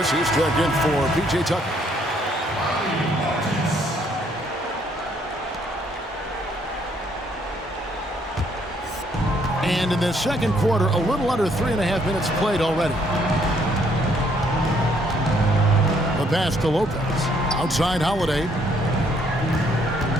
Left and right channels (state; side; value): normal; both; correlation 0.68